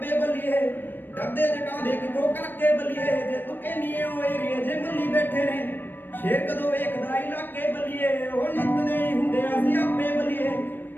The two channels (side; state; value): right; late; 0.094 ms